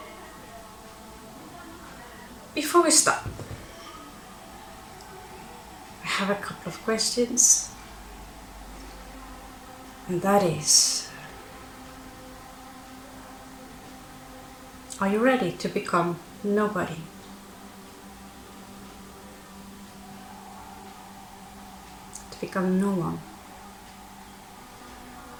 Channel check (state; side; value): identical; both; correlation 1.00